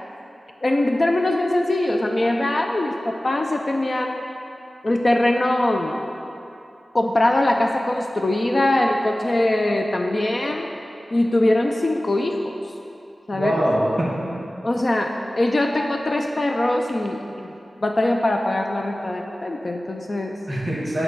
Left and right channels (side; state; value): both; normal; correlation 0.97